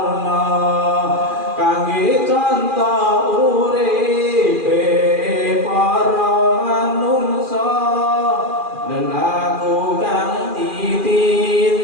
kangge contoh uripe para manungsa. Lelaku kang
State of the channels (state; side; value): late; left; 2.4 ms